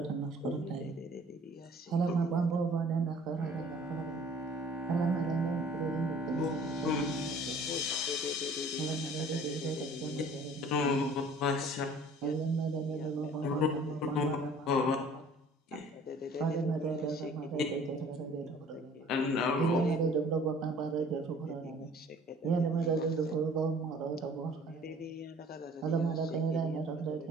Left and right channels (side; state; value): both; normal; correlation 0.51